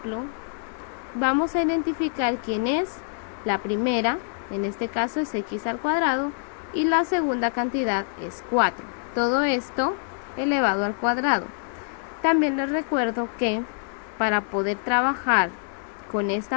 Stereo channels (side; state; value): right; silent; 61 dB below the other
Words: Vamos a identificar quién es la primera, en este caso es x al cuadrado, y la segunda cantidad es 4. Todo esto elevado al cuadrado. También les recuerdo que para poder trabajar con